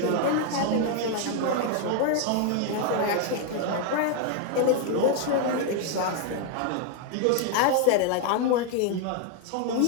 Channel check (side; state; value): both; different; correlation 0.00